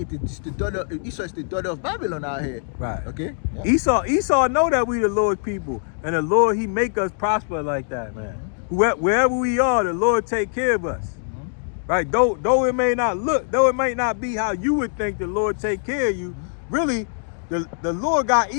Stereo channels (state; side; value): silent; right; digital silence